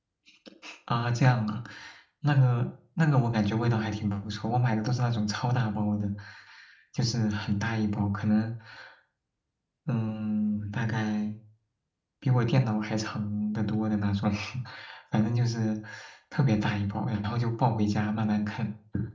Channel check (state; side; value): identical; both; correlation 1.00